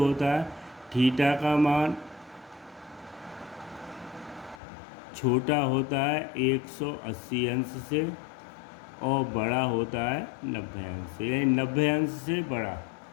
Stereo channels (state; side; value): drops out; right; at 4.6 s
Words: है, थीटा का मान छोटा होता है 180 अंश से और बड़ा होता है 90 अंश से। यानी 90 अंश से बड़ा